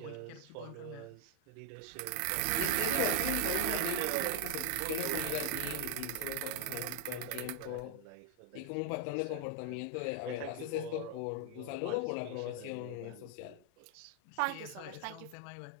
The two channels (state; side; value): different; both; correlation 0.00